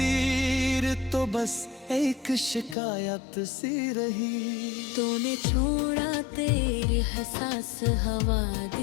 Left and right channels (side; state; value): right; drops out; at 2.8 s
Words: तो बस एक शिकायत सी रही। तूने छोड़ा तेरी हसास हवा